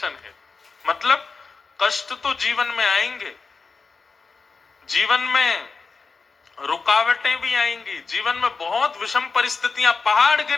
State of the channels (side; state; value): right; quieter; 4.5 dB